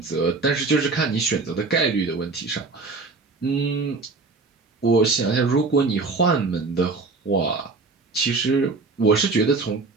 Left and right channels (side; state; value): left; quieter; 4.0 dB